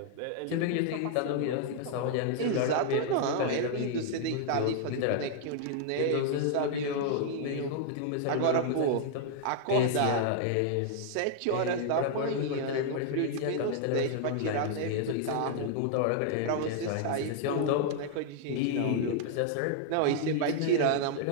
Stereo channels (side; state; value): both; different; correlation -0.01